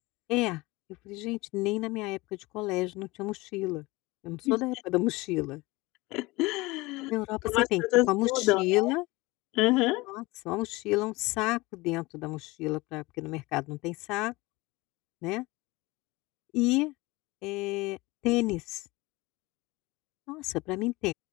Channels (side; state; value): right; quieter; 22.2 dB